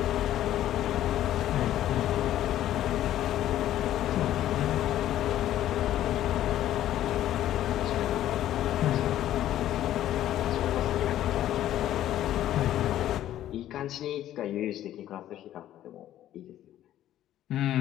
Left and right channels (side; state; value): right; quieter; 12.6 dB